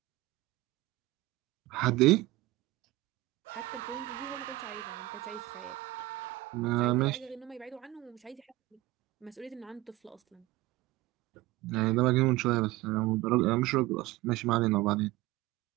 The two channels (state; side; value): quieter; left; 18.2 dB